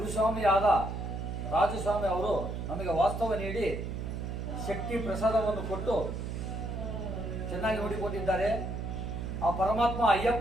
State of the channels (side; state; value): right; noise; hum, 5 dB below the sound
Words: ಆದ ರಾಜಸ್ವಾಮಿ ಅವರು ನಮಗೆ ವಾಸ್ತವ ನೀಡಿ ಶಕ್ತಿ ಪ್ರಸಾದವನ್ನು ಕೊಟ್ಟು ಚೆನ್ನಾಗಿ ನೋಡಿಕೊಂಡಿದ್ದಾರೆ. ಆ ಪರಮಾತ್ಮ